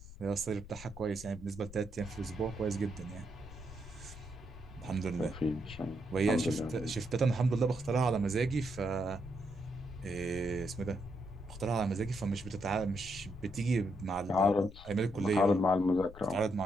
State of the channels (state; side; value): noise; left; rumble, 16 dB below the sound